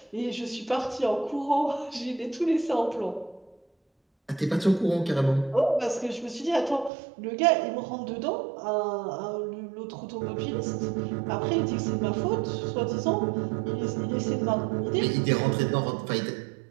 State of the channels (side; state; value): left; drops out; at 6.9 s